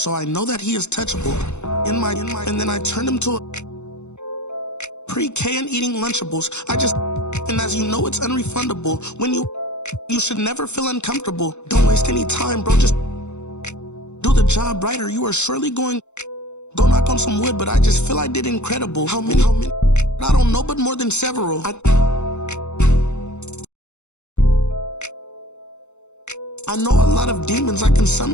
I know that he is touchable. And then I turned him to a pre-K and eating Lunchables. And as you know, it's unrefundable. When you should never feel uncomfortable. Don't waste any time, bro. Just do the job right or you are surely going. Go knock on some wood, but I just feel I did incredible. How many? I don't know, but more than several. I know a lot of demons. I can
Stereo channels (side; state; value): right; late; 0.82 ms